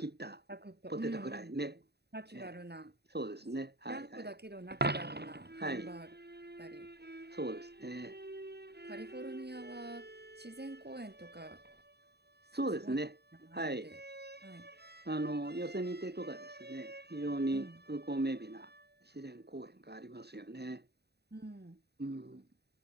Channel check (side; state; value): left; late; 0.48 ms